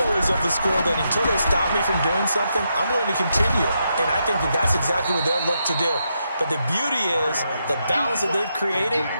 always of the school that until they stop me from doing something, I'm going to continue. And I think that that's exactly what they'll look to do. But the beauty is the balance that they've created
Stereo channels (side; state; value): both; inverted; correlation -0.82